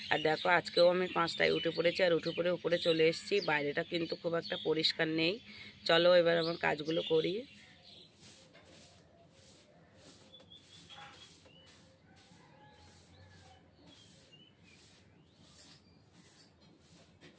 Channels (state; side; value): identical; both; correlation 1.00